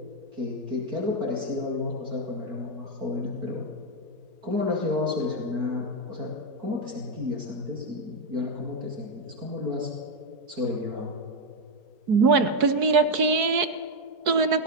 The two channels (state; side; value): late; left; 4.7 ms